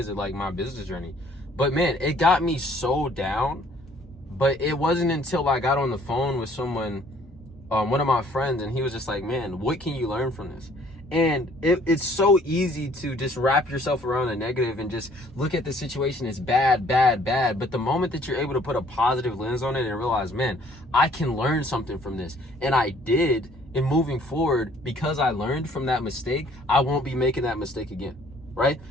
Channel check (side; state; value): both; normal; correlation 0.58